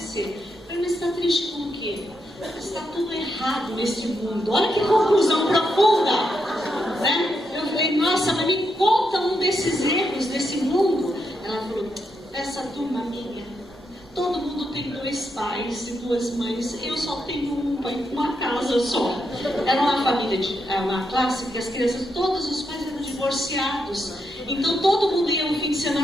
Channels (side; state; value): both; normal; correlation 0.82